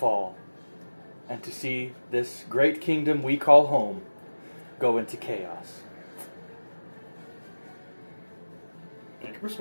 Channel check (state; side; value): inverted; both; correlation -1.00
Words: and to see this great kingdom we call home go into chaos. Make a